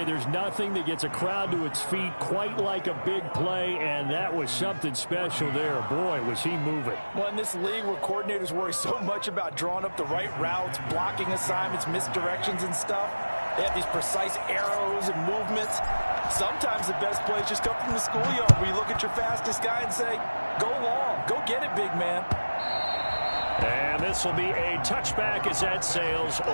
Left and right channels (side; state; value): both; inverted; correlation -1.00